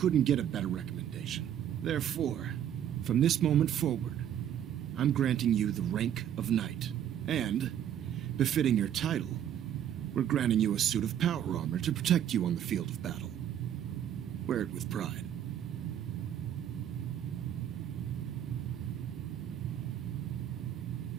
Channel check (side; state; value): left; quieter; 10.1 dB